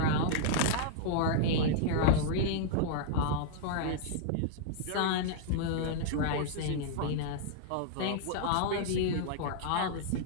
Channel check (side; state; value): both; different; correlation -0.01